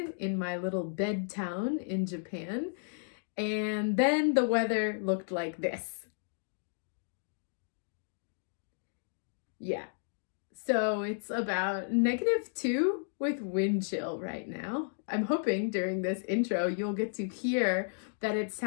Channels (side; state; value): right; silent; digital silence